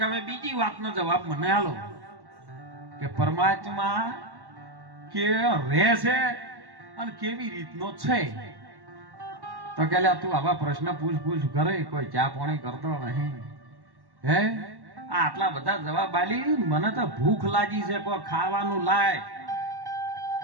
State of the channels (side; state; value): left; late; 1.1 ms